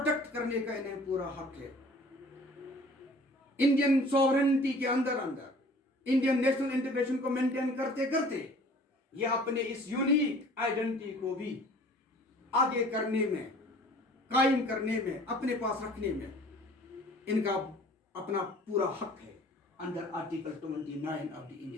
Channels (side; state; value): both; normal; correlation 0.50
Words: کرنے کا انہیں پورا حق ہے. انڈین سوورنٹی کے اندر انڈین نیشنل انٹیگریشن کو مینٹین کرتے کرتے یہ اپنے اس یونیک آئیڈینٹی کو بھی آگے کرنے میں, قائم کرنے میں, اپنے پاس رکھنے میں ان کا اپنا پورا حق ہے under article 29 of the